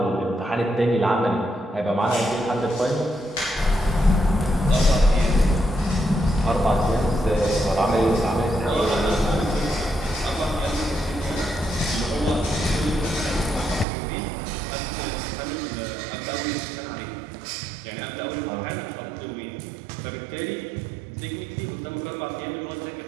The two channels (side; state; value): left; drops out; at 13.9 s